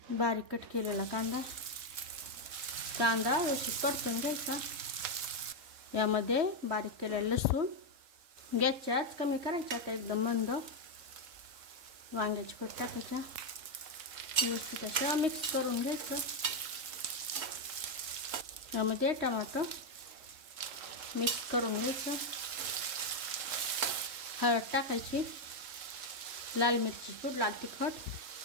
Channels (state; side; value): late; left; 3.1 ms